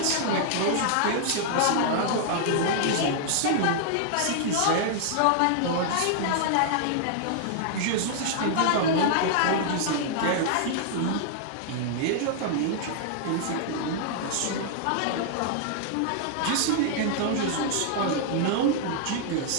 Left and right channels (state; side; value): different; both; correlation -0.01